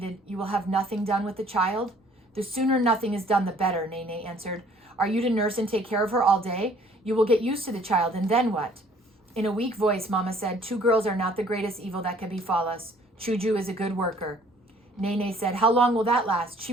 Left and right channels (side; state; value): both; normal; correlation 0.57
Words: "You will have nothing done with the child?" "The sooner nothing is done, the better," Nene answered. "Are you to nurse and take care of her all day? You will get used to the child, and then what?" In a weak voice, Mama said, "2 girls are not the greatest evil that can befall us. Chuju is a good worker." Nene said, "How long will that last? She